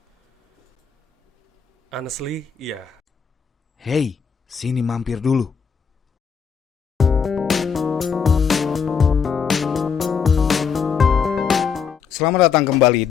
Honestly, iya. Hey, sini mampir dulu. Selamat datang kembali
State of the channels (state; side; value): quieter; right; 6.4 dB